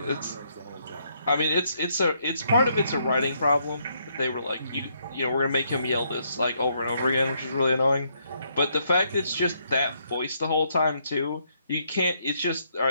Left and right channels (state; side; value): inverted; both; correlation -0.73